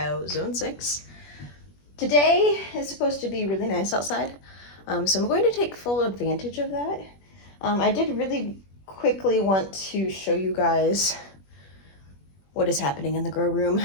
Zone 6. Today is supposed to be really nice outside, so I'm going to take full advantage of that. I did really quickly want to show you guys what is happening in the grow room.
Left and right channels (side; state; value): right; late; 21 ms